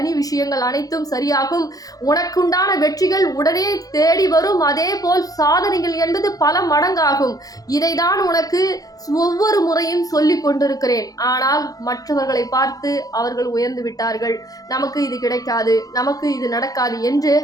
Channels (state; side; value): late; right; 0.18 ms